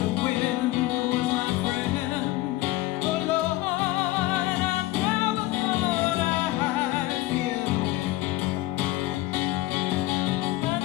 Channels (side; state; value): right; quieter; 17.7 dB